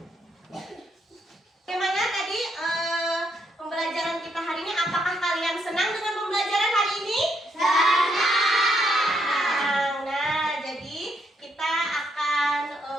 Bagaimana tadi pembelajaran kita hari ini? Apakah kalian senang dengan pembelajaran hari ini? Senang. Nah, jadi kita akan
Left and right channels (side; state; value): both; normal; correlation 0.75